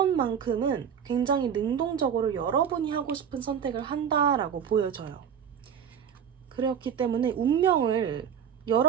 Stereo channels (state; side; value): quieter; left; 8.0 dB